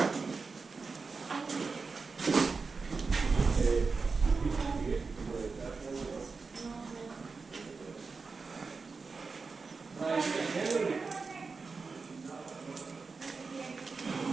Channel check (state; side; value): quieter; left; 4.5 dB